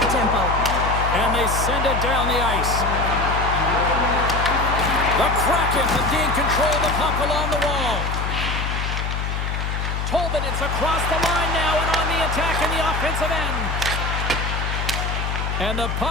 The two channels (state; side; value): noise; left; hum, 2 dB below the sound